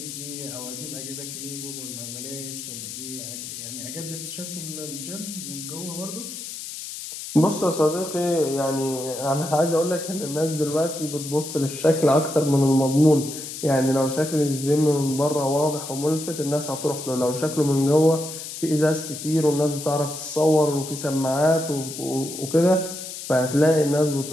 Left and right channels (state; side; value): noise; left; hiss, 9 dB below the sound